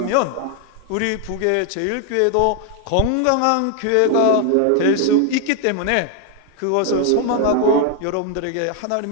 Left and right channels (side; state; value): both; different; correlation 0.00